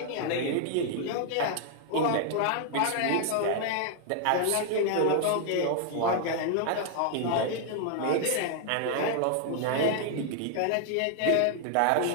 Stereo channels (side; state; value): both; different; correlation 0.00